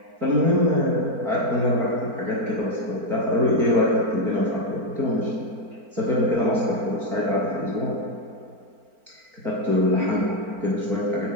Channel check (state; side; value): late; left; 4.4 ms